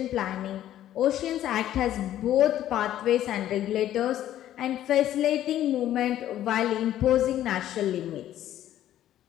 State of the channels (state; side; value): quieter; right; 12.3 dB